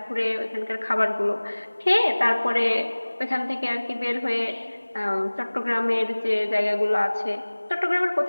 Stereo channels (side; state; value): both; inverted; correlation -1.00